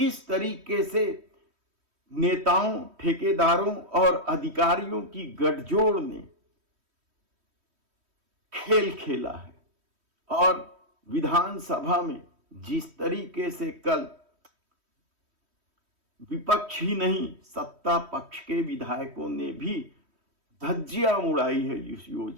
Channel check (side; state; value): left; late; 3.1 ms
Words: तरीके से नेताओं, ठेकेदारों और अधिकारियों की गठजोड़ ने खेल खेला है। और विधानसभा में जिस तरीके से कल विपक्ष ही नहीं सत्ता पक्ष के विधायकों ने भी धज्जियां उड़ाई है इस